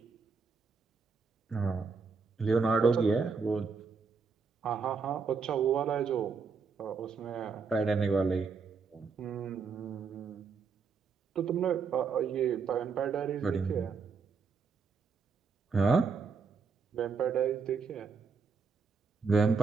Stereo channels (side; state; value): left; quieter; 5.2 dB